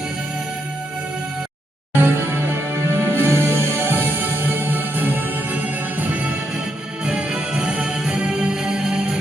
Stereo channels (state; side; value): normal; both; correlation 0.80